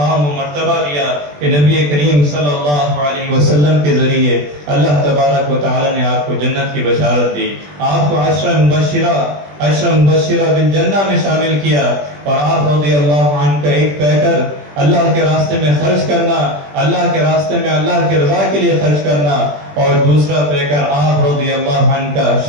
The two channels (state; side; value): late; left; 20 ms